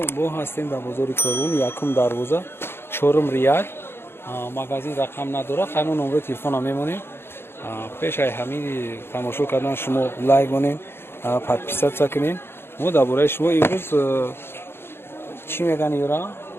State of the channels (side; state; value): right; late; 0.11 ms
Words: ҳастем дар бозори Корун, якум дарвоза, чорум рияд. Магазин рақам надорад, ҳамин номери телефонам мемонем. Пеш аз ҳамин тамошо кардан шумо лайк конед, подписатсия кунед. Мо дар бораи шумо имрӯз чӣ мегӯянд ёра?